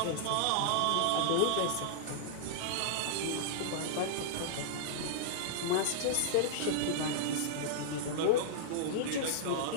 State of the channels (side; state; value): both; different; correlation -0.02